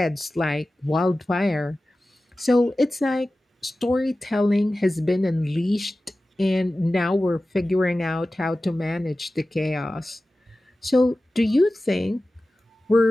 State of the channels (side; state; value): both; normal; correlation 0.95